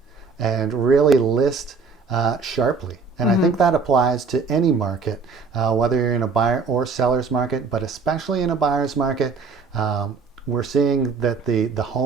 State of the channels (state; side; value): quieter; left; 4.8 dB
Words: and really list sharply. And I think that applies to any market, whether you're in a buyer or seller's market, but especially in a buyer's market. We're seeing that the